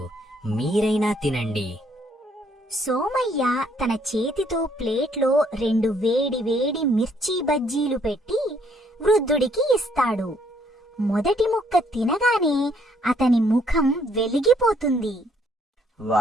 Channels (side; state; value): both; normal; correlation 0.67